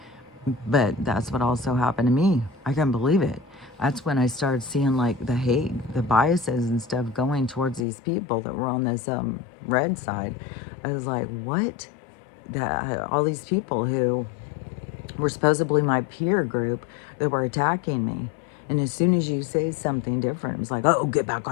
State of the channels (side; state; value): right; drops out; at 7.8 s